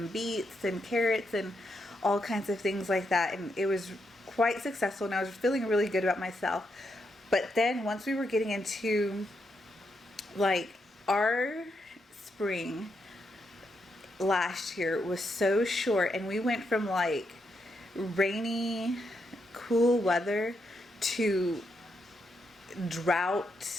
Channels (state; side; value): normal; both; correlation 0.81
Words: beets and carrots and all kinds of things like that, and it was quite successful, and I was feeling really good about myself. But then once we were getting into, like, our spring last year was so short, and we went from like rainy, cool weather to